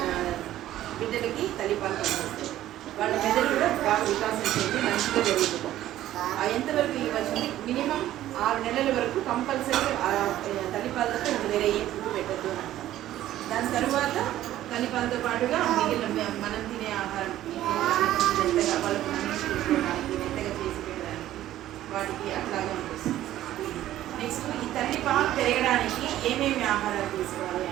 బిడ్డలకి తల్లిపాలు పనికొస్తాయి. వాళ్ళ మెదడు కూడా బాగా వికాసం చెంది మంచిగా జరుగుతుంది. ఎంతవరకు ఇవ్వచ్చు మినిమం 6 నెలల వరకు కంపల్సరీ తల్లిపాలతో వేరే ఏ ఫుడ్ పెట్టద్దు అని అంటాం. దాని తర్వాత తల్లిపాలతో పాటుగా మిగిలిన మనం తినే ఆహారం మెత్తగా వాళ్ళకు తీసుకోవడానికి, మెత్తగా చేసి పెట్టడానికి వాటికి అట్లాగే ఉంటుంది. నెక్స్ట్ ఈ తల్లిపాలు పెరగడానికి ఏమేమి ఆహారాలు తీసుకోవాలి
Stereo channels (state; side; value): quieter; left; 13.5 dB